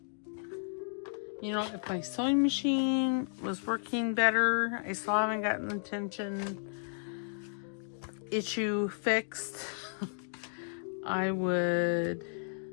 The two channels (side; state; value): right; silent; digital silence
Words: You know, if my sewing machine was working better, I still haven't gotten the tension issue fixed, I would...